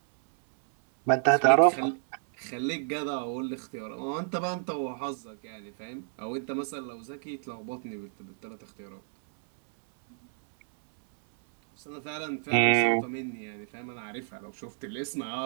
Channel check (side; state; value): left; silent; 58 dB below the other